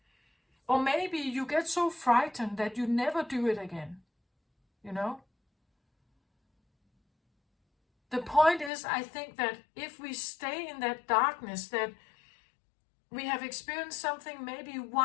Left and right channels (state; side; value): drops out; right; at 8.7 s